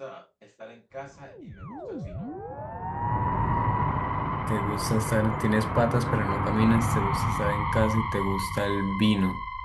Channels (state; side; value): identical; both; correlation 1.00